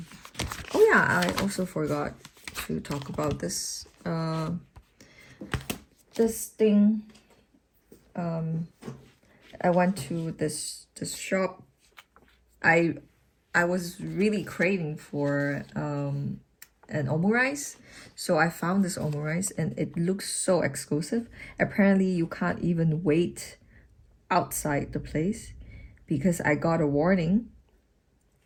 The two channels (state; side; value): identical; both; correlation 1.00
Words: oh yeah, I also forgot to talk about this this thing. I went to this shop. I I was really craving for an Omu-rice. So I found this Omu-rice and it looks so exclusive. Apparently you can't even wait outside the place because I got a warning